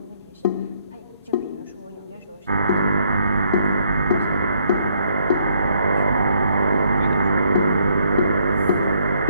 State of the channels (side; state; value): both; inverted; correlation -0.70